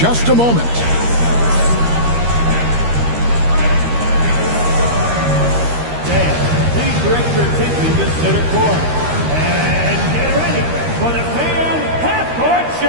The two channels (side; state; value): left; late; 13 ms